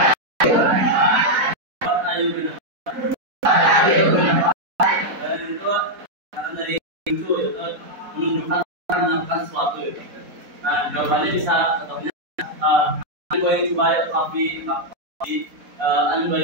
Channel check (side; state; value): left; late; 4.1 ms